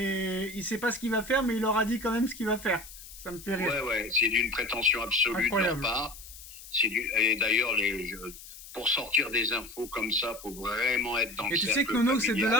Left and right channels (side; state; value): left; noise; hiss, 16 dB below the sound